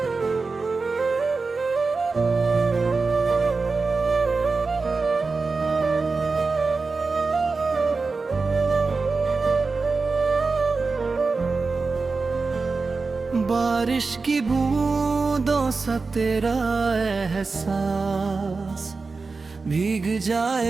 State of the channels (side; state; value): left; quieter; 4.2 dB